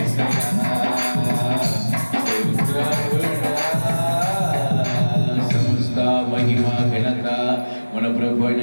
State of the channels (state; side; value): inverted; both; correlation -1.00